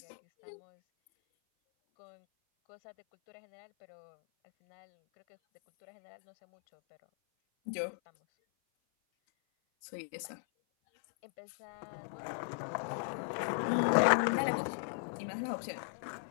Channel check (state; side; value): silent; right; 53 dB below the other